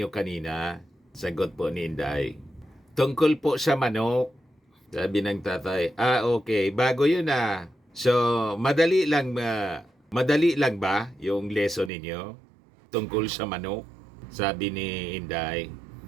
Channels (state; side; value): drops out; left; at 11.9 s